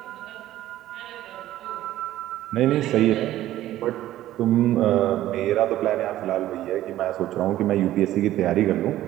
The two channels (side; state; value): left; quieter; 14.0 dB